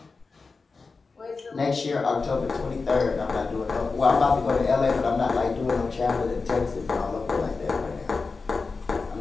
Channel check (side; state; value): right; quieter; 4.3 dB